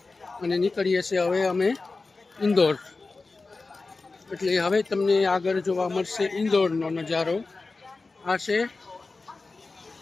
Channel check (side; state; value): right; quieter; 3.8 dB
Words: અને નીકળીએ છીએ હવે અમે ઇન્દોર. એટલે હવે તમને આગળ જોવા મળશે ઇન્દોરનો નજારો. આ છે